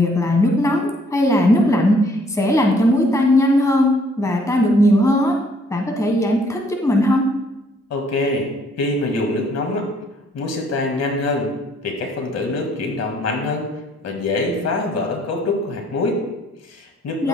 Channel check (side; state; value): both; normal; correlation 0.64